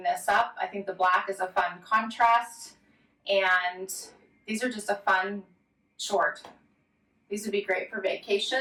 this up. I think the black is a fun contrast, and these are just a fun short. These would be great for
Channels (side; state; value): both; identical; correlation 1.00